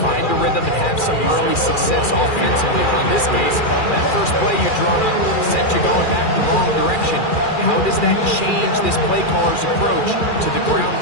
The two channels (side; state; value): right; late; 2.4 ms